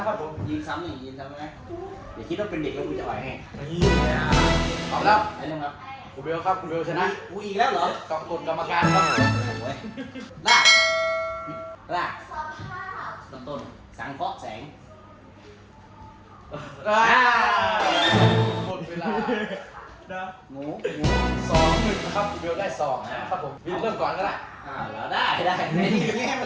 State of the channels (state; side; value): identical; both; correlation 1.00